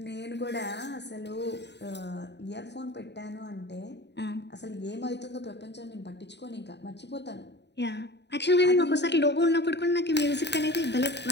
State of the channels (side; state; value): right; late; 0.50 ms